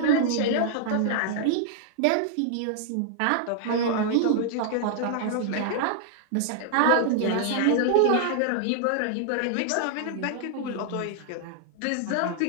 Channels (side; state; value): both; different; correlation -0.01